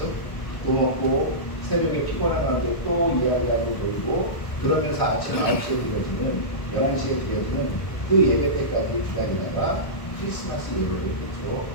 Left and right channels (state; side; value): late; right; 1.3 ms